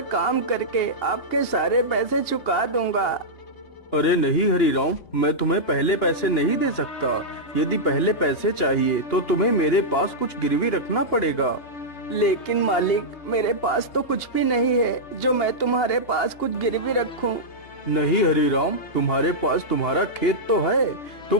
काम करके आपके सारे पैसे चुका दूंगा। अरे नहीं हरीराम, मैं तुम्हें पहले पैसे नहीं दे सकता। यदि पहले पैसे चाहिए तो तुम्हें मेरे पास कुछ गिरवी रखना पड़ेगा। लेकिन मालिक, मेरे पास तो कुछ भी नहीं है जो मैं तुम्हारे पास कुछ गिरवी रखूं। नहीं हरीराम, तुम्हारे पास तुम्हारा खेत तो है।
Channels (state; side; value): late; right; 2.9 ms